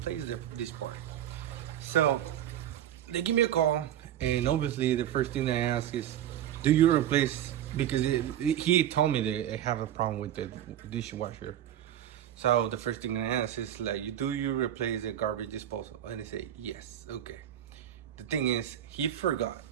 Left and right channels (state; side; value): quieter; left; 11.3 dB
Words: this part. So they give me a call, and obviously the first thing they ask is, do you replace, because he told me they have a problem with the dishwasher. So the first thing I ask is like, do you replace the garbage disposal? And they say yes. Okay. The thing is, he forgot